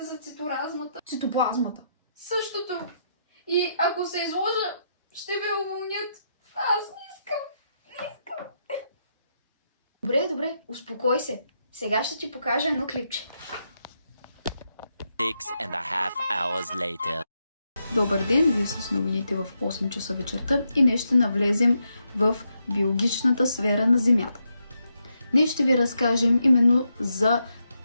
за циторазмата. Цитоплазмата. Същото. И ако се изложа, ще ме уволнят. Аз не искам. Добре, успокой се. Сега ще ти покажа едно клипче. 6.5 hours later. Добър ден, вие с новините в 8 часа вечерта и днес ще навлезем в биологичната сфера на Земята. Днес ще ви разкажем именно за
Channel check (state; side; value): inverted; both; correlation -0.81